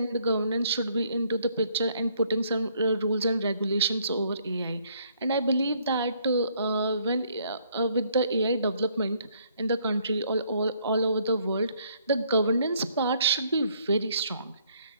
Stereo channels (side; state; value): both; inverted; correlation -0.66